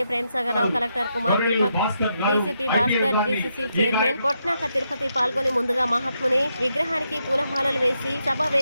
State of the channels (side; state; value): both; inverted; correlation -0.81